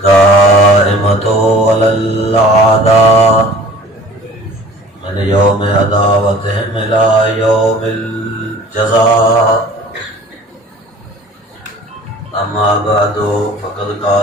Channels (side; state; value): both; normal; correlation 0.46